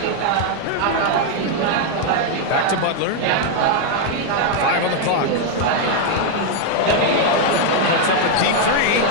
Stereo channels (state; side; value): different; both; correlation 0.00